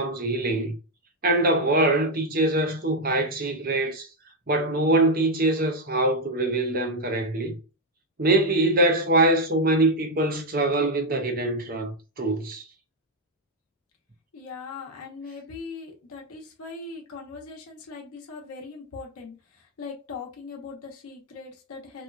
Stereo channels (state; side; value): normal; both; correlation 0.03